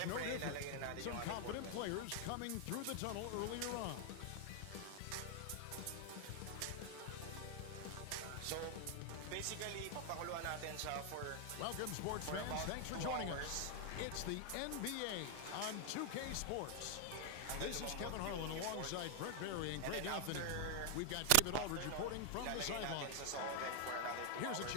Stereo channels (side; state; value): both; different; correlation 0.00